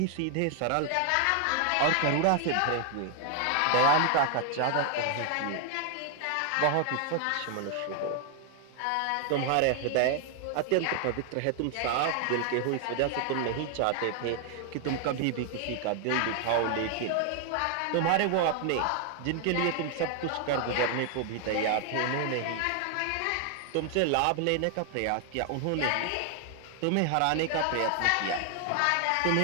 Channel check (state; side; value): different; both; correlation 0.00